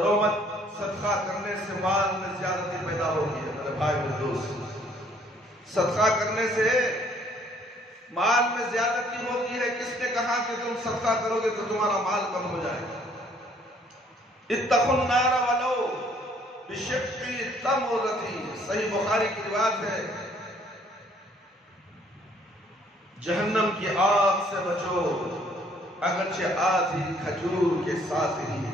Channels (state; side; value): normal; both; correlation 0.62